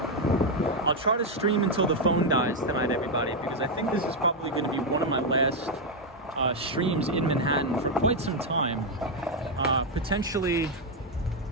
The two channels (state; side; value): normal; both; correlation 0.03